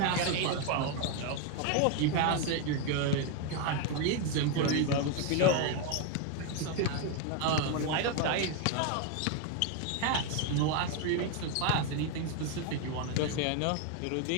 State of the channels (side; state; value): both; different; correlation 0.01